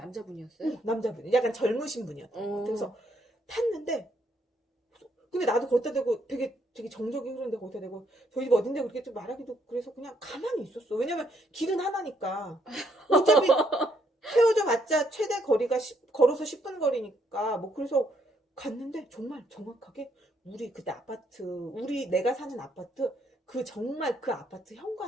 남자분. 약간 젊으신 분이었던. 그래서 탔는데 근데 나도 거기다 대고 되게 정적이 흐르는데 거기다 대고 저희 집 어딘데 그렇게 좀 말하기도 그래서 그냥 가만히 있었어. 왜냐면 길은 하나니까. 어차피 세워져 봤자 최대 거리가 걸어서 10분 거리니까 뭐 그래서 갔는데 정말 정확하게 우리 그때 내가 사는 아파트 정말 그 아파트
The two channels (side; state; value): both; normal; correlation 0.72